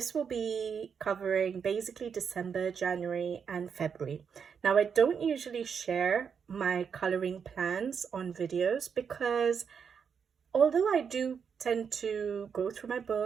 will be covering basically December, January and February. Now I don't usually share my coloring plans on videos because although I do tend to go through my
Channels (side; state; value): left; quieter; 6.8 dB